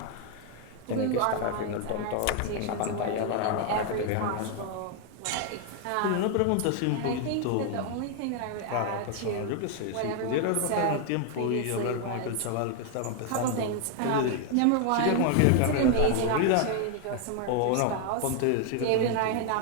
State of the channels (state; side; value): different; both; correlation 0.00